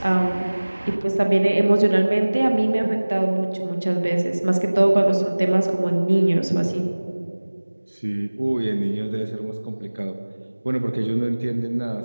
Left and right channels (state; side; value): inverted; both; correlation -1.00